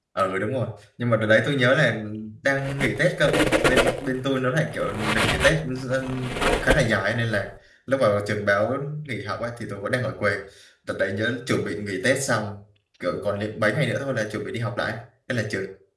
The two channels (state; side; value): identical; both; correlation 1.00